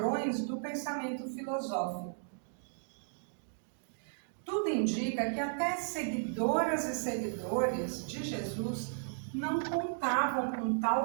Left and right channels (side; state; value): left; silent; digital silence